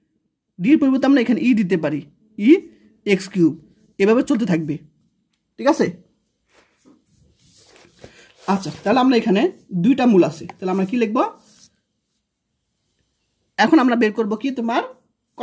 ডির পরিবর্তে আমরা এখানে ই দিতে পারি, ই এক্স কিউব, এভাবে চলতে থাকবে। ঠিক আছে, আচ্ছা, তাহলে আমরা এখানে দুইটা মূল আছে, তাহলে আমরা কি লিখব? এখন আমরা বের করব কি, তোমার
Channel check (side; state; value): both; identical; correlation 1.00